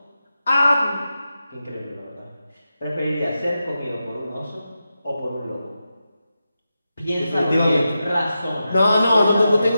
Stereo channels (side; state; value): both; inverted; correlation -0.90